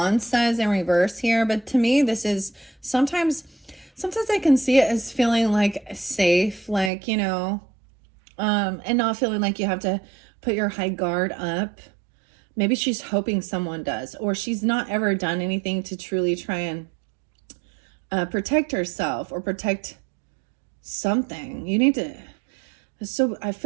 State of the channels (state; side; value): drops out; left; at 6.9 s